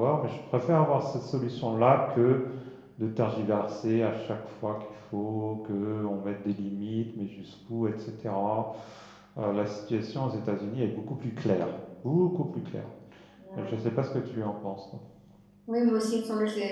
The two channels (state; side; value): identical; both; correlation 1.00